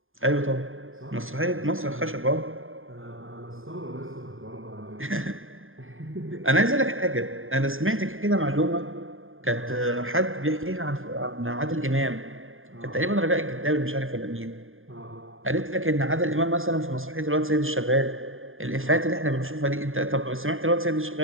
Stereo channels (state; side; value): late; left; 0.59 ms